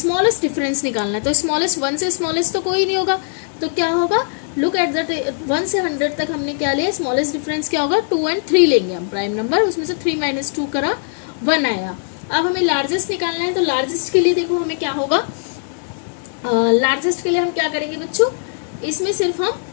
डिफरेंस निकालना है। तो स्मॉलेस्ट 1 से स्मॉलेस्ट तो कोई नहीं होगा, तो क्या होगा, लुक एट द 1 से 100 तक हमने क्या लिया, स्मॉलेस्ट डिफरेंस क्या होगा, 2 and 3 लेंगे हम प्राइम नंबर, उसमें से 3 - 2 करा 1 आया। अब हमें लार्जेस्ट निकालना है, तो लार्जेस्ट के लिए देखो हमें क्या होगा, लार्जेस्ट के लिए हम क्या करेंगे बच्चों, इसमें सिर्फ हम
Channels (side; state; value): right; silent; 66 dB below the other